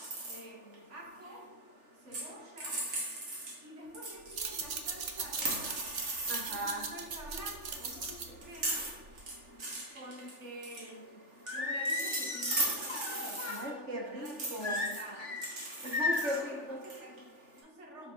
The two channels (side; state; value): left; late; 3.4 ms